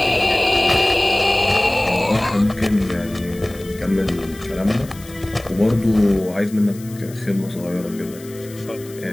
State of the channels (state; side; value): noise; left; hiss, 20 dB below the sound